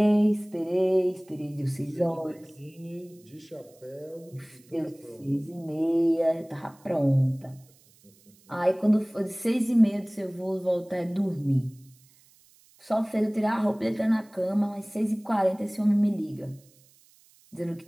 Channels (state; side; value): noise; right; hiss, 29 dB below the sound